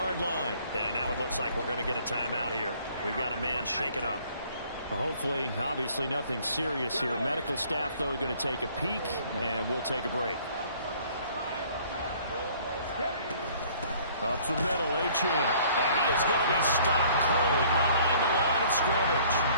line. And now it looks like we're going to get a timeout here. We've got a man shaken up. Well, hopefully, obviously nothing serious here. Medical staff, though, going to take a peek, and we'll take a break. Up the middle, Achane. And he is going to be stopped cold behind the line of scrimmage.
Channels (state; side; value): inverted; both; correlation -0.56